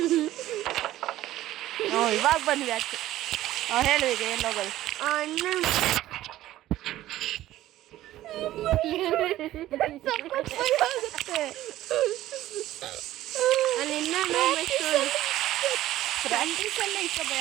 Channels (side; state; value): left; quieter; 14.6 dB